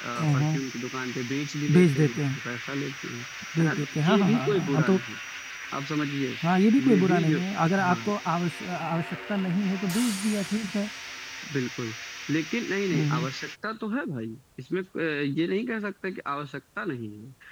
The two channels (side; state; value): both; identical; correlation 1.00